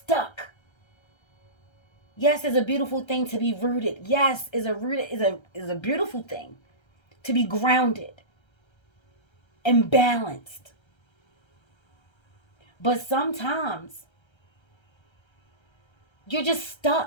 Yes, it's a beautiful thing to be rooted. Yes, is a beautiful thing to be grounded and balanced. But sometimes you're just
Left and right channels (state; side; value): late; right; 1.3 ms